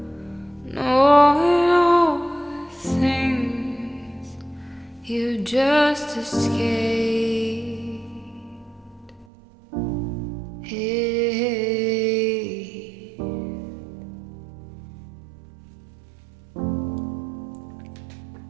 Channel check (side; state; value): left; drops out; at 9.2 s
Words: knowing all the things you just escaped.